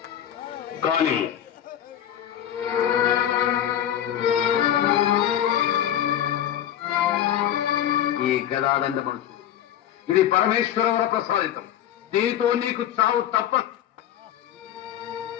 కానీ ఈ గదాదండ మనసు ఇది పరమేశ్వర ప్రసాదితం. దీనితో నీకు చావు తప్ప.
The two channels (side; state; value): right; quieter; 10.8 dB